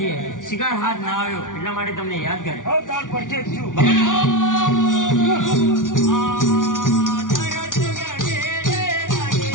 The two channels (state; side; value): late; right; 0.88 ms